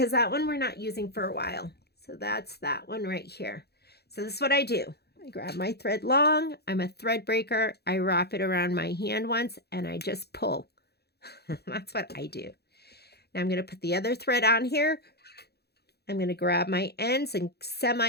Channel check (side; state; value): right; late; 0.47 ms